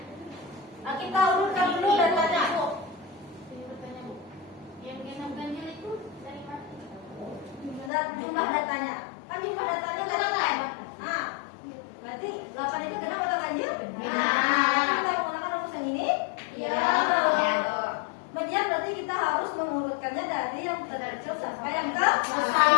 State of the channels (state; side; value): drops out; right; at 7.9 s